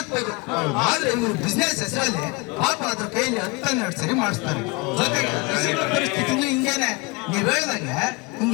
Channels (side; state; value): right; quieter; 26.7 dB